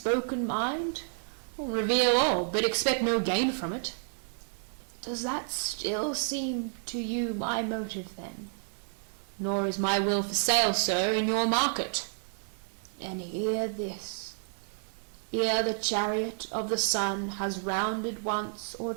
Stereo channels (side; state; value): left; silent; digital silence